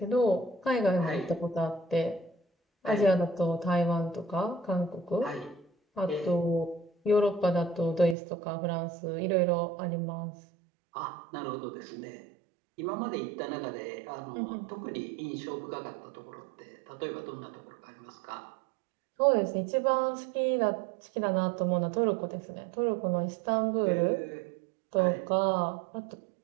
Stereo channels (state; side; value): drops out; left; at 8.2 s